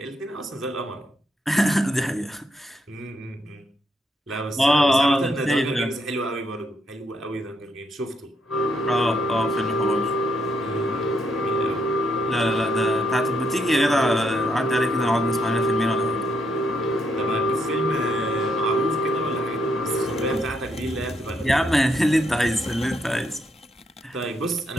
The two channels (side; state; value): both; normal; correlation 0.77